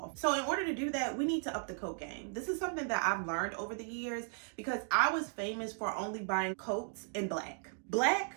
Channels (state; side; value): silent; left; 54 dB below the other